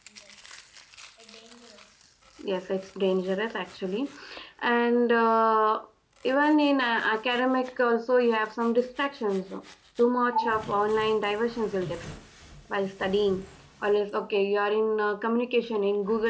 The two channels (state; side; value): identical; both; correlation 1.00